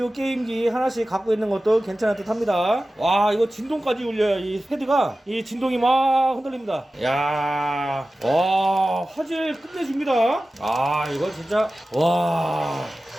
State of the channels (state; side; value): normal; both; correlation 0.95